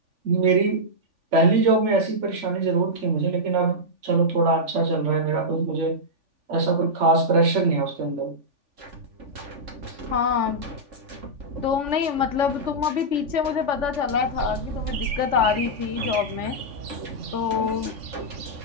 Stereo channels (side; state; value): left; late; 3.5 ms